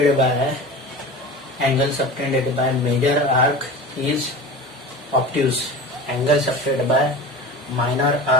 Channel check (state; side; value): normal; both; correlation 0.33